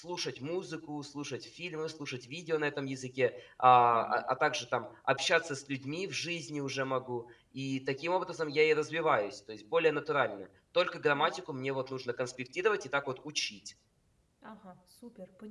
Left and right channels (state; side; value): identical; both; correlation 1.00